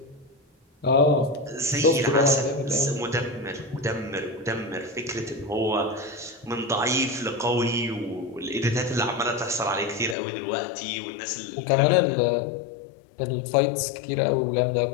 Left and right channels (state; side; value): drops out; right; at 10.2 s